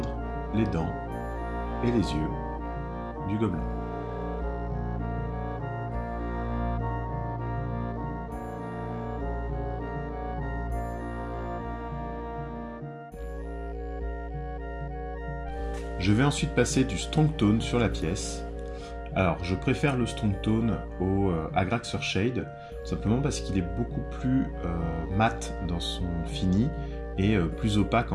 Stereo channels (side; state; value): both; identical; correlation 1.00